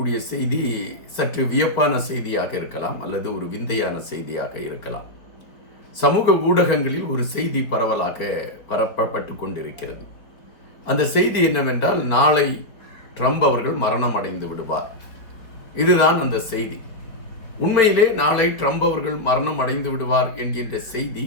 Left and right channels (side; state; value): right; late; 4.1 ms